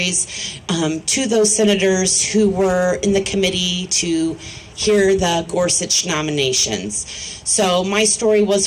to those senators who were in the committee to hear the Gorsuch nominations. So my story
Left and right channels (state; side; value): identical; both; correlation 1.00